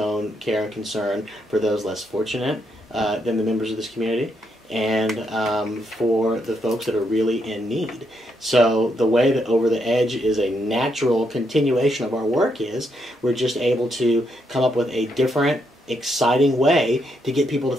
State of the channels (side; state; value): both; normal; correlation 0.78